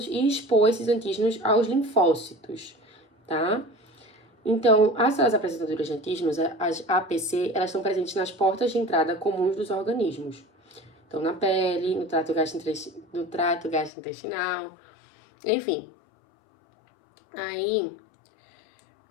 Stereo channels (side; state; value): right; drops out; at 13.9 s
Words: e expor esses antígenos aos linfócitos, tá? Então, as células apresentadoras de antígenos, as APC, elas estão presentes nas portas de entrada comuns dos organismos. Então, na pele, no trato gastrointestinal, enfim. Aí,